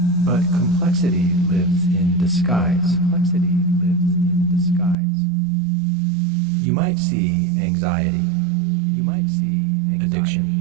But complexity lives in disguise. You might see anxiety. Addiction.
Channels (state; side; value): drops out; left; at 5.0 s